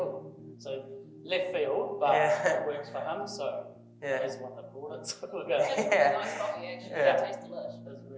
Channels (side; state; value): both; identical; correlation 1.00